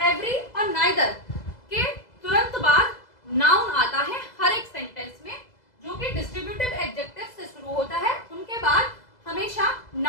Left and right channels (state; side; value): late; right; 2.0 ms